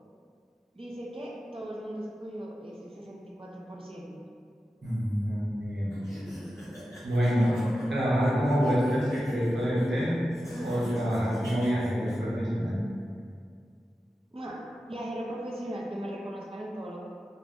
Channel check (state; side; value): normal; both; correlation 0.92